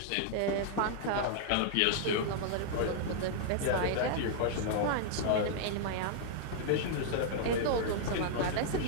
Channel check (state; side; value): different; both; correlation -0.01